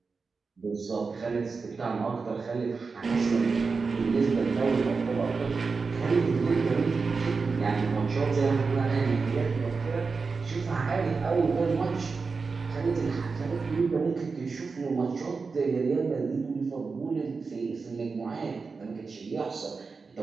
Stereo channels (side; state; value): left; quieter; 4.6 dB